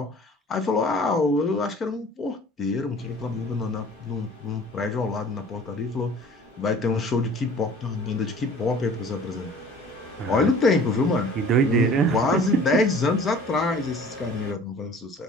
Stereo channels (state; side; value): normal; both; correlation 0.47